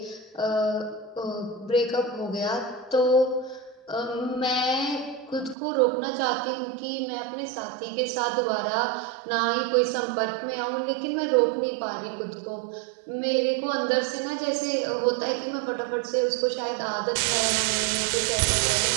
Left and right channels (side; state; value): left; drops out; at 5.6 s